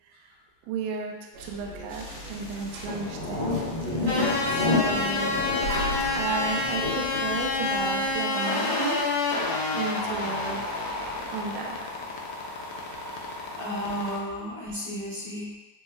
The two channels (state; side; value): late; left; 24 ms